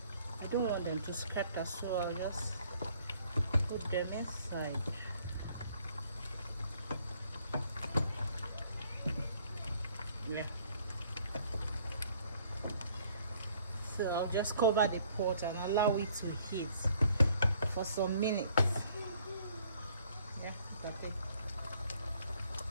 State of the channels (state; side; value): inverted; both; correlation -0.62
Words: I don't want them to scatter, so I'll just put them inside. Yeah. So I'll just cover the pot and allow it to heat for some minutes. Yeah, look at it.